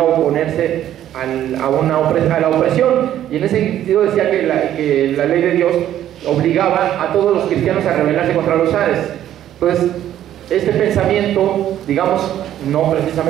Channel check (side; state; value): left; quieter; 11.7 dB